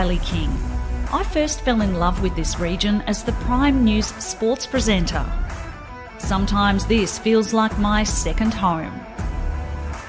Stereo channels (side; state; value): both; identical; correlation 1.00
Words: King. I first fell in love with this region as the Prime News sports presenter. Sometimes this feels like my second home.